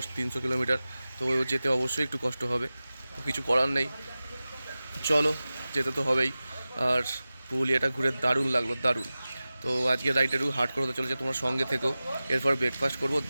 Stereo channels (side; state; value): both; inverted; correlation -0.96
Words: 300 কিলোমিটার। তো যেতে অবশ্যই একটু কষ্ট হবে, তো কিছু করার নেই, চলো যেতে তো হবেই। আর পুরুলিয়াটা ঘুরে দারুণ লাগলো, দারুণ। তো আজকে রাইডটা একটু হার্ড করে হতে চলেছে, তোমার সঙ্গে থেকো। এরপর ব্রেকফাস্ট করবো,